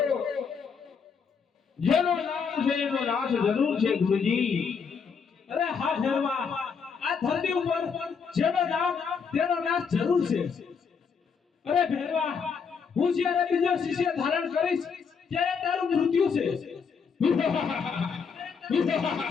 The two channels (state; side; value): quieter; right; 6.0 dB